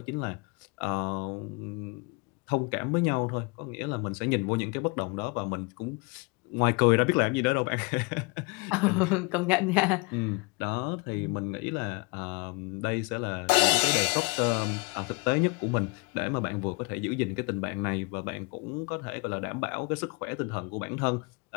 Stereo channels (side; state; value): right; quieter; 28.8 dB